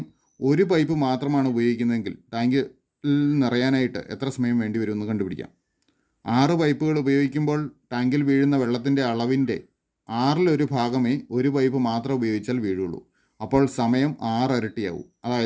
ഒരു പൈപ്പ് മാത്രമാണ് ഉപയോഗിക്കുന്നതെങ്കിൽ ടാങ്കിൽ നിറയാനായിട്ട് എത്ര സമയം വേണ്ടി വരുമെന്ന് കണ്ടുപിടിക്കാം. 6 പൈപ്പുകൾ ഉപയോഗിക്കുമ്പോൾ ടാങ്കിൽ വീഴുന്ന വെള്ളത്തിൻ്റെ അളവിൻ്റെ 1/6 ഭാഗമേ ഒരു പൈപ്പ് മാത്രം ഉപയോഗിച്ചാൽ വീഴുള്ളൂ. അപ്പോൾ സമയം 6 ഇരട്ടിയാവും.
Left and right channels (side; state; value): both; identical; correlation 1.00